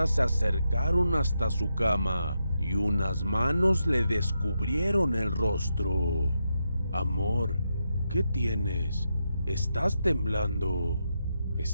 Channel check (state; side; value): inverted; both; correlation -0.85